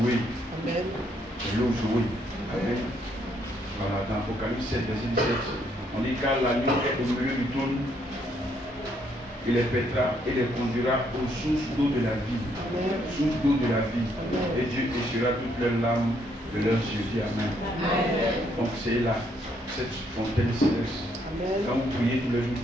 Amen. L'eau jouée. Amen. Voilà, dans Apocalypse 7, verset 17, on dit car l'agneau est au milieu du trône, il les pètera et les conduira aux sources d'eau de la vie. Amen. Source d'eau de la vie. Amen. Et Dieu essuiera toutes leurs larmes de leurs yeux. Dis Amen. Amen. Donc c'est là, cette fontaine céleste. Amen. Quand vous priez tous les jours,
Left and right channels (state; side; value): normal; both; correlation 0.71